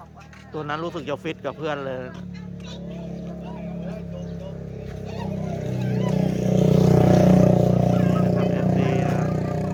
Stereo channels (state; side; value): identical; both; correlation 1.00